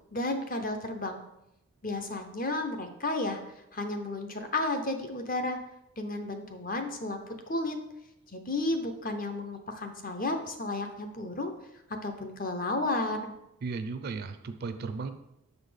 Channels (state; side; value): normal; both; correlation 0.12